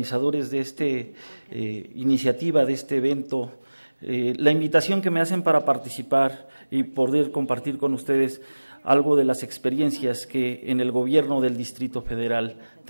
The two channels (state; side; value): inverted; both; correlation -1.00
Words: de esta iniciativa, de este evento, la invitación que me hacen para participar y poder compartir con ustedes algo de las experiencias que en el gobierno del Distrito Federal